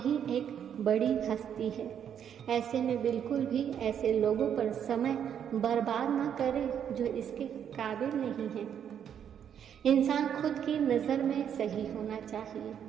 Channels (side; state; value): left; quieter; 8.7 dB